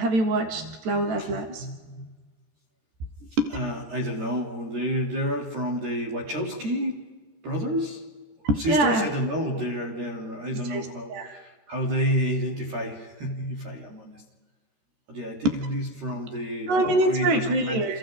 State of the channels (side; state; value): left; late; 13 ms